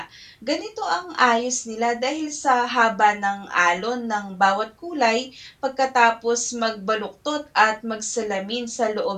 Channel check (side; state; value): both; identical; correlation 1.00